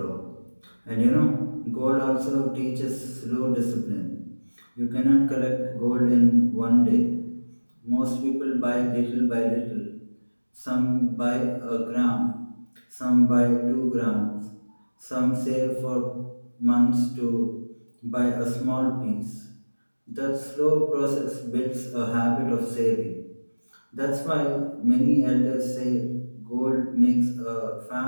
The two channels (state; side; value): inverted; both; correlation -1.00